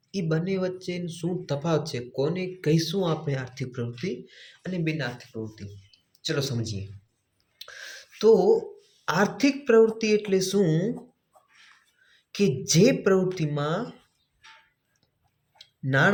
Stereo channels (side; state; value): both; identical; correlation 1.00